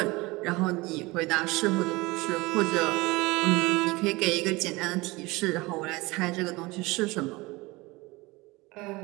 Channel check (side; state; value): left; quieter; 22.5 dB